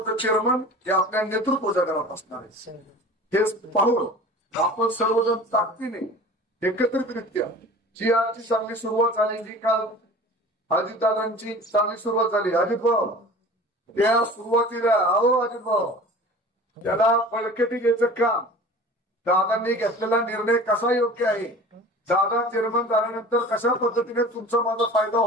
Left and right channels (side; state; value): both; normal; correlation 0.40